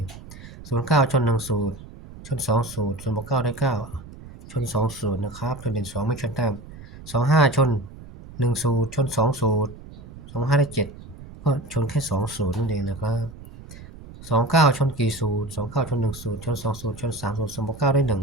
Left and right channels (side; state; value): right; noise; rumble, 16 dB below the sound